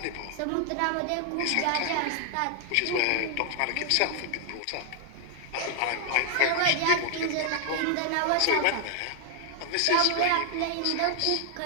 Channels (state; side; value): different; both; correlation 0.00